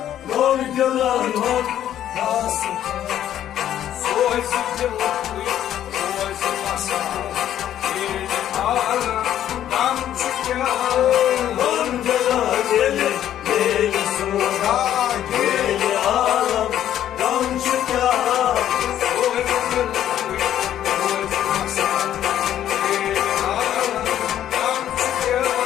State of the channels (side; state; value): right; quieter; 11.2 dB